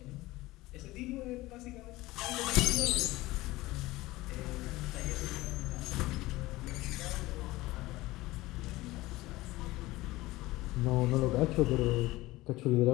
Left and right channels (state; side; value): quieter; right; 19.0 dB